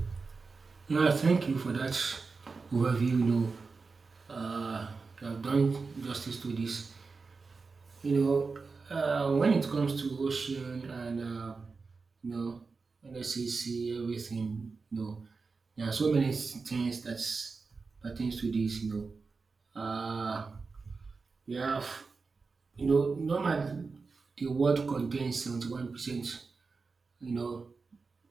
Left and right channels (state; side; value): quieter; left; 4.4 dB